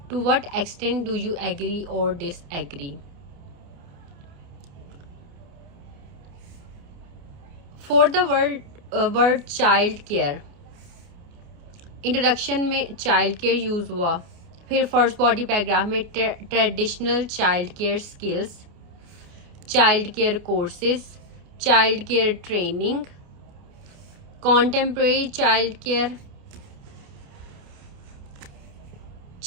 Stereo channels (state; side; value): late; left; 29 ms